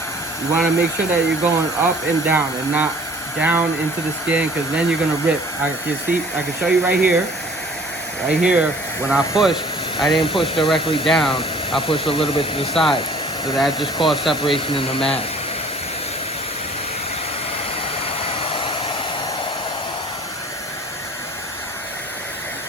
you want to make sure that you're going up and down and not down into the skin, because then you're going to rip. I can show you right here. Right here, when I push, I didn't push directly down. I pushed a little bit to the side. So that just caused separation in the mask.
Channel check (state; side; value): normal; both; correlation 0.51